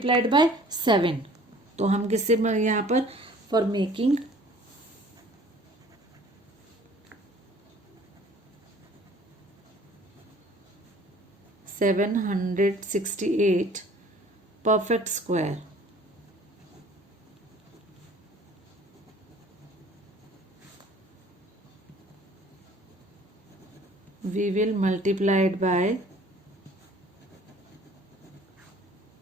by 7. तो हम किससे यहाँ पर, for making 768 perfect square, we will multiply it by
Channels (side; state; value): both; normal; correlation 0.51